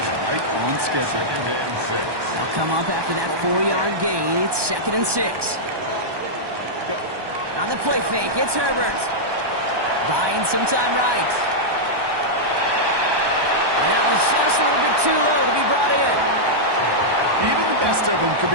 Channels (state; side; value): late; left; 1.2 ms